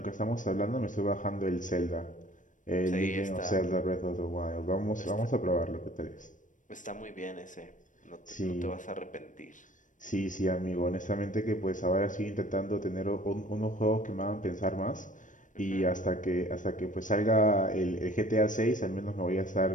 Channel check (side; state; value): right; late; 0.37 ms